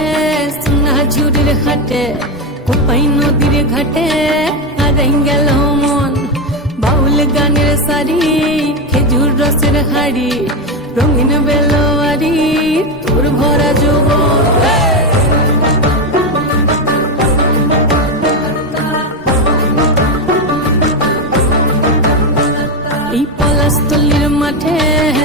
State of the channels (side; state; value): both; normal; correlation 0.11